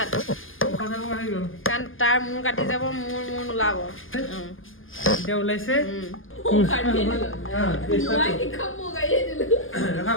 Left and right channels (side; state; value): right; late; 0.59 ms